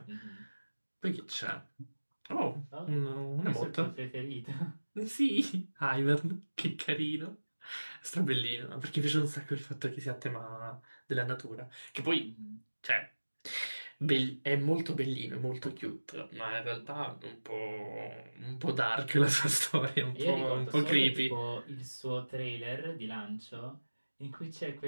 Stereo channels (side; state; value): both; inverted; correlation -1.00